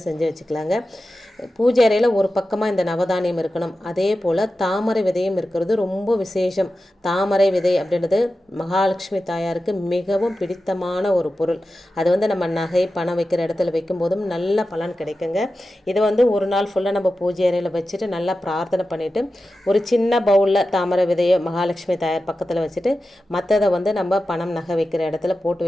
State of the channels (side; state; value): both; normal; correlation 0.93